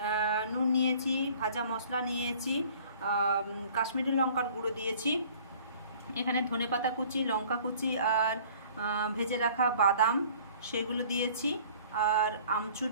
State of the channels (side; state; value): both; inverted; correlation -0.51